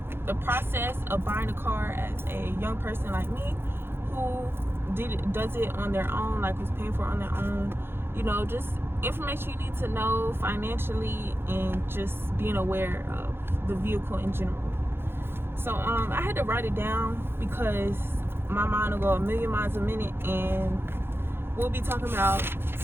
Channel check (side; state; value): left; late; 0.11 ms